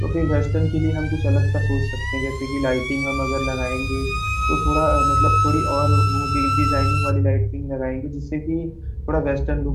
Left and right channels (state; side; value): identical; both; correlation 1.00